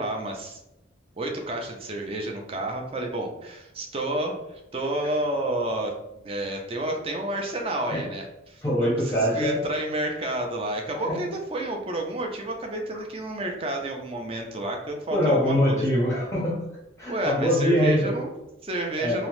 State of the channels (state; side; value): normal; both; correlation 0.40